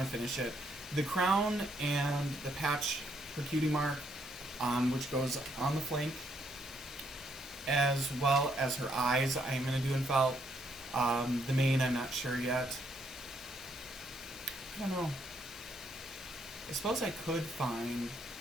to finish it. The crown and the patch for Cutie Mark, which goes on the flank, as well as her eyes, I am going to do in felt. The mane, I'm not sure yet. I don't know. I suppose I could find,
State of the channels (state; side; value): normal; both; correlation 0.73